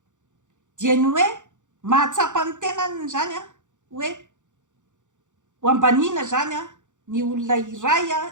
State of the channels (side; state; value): left; late; 0.86 ms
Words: dia ny hoe mahatsapa ny tenany zany a hoe ho ambanina zany a ny olona iray a